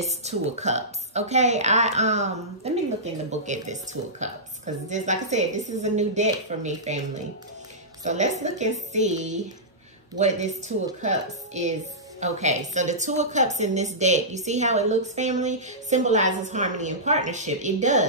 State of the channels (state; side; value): normal; both; correlation -0.16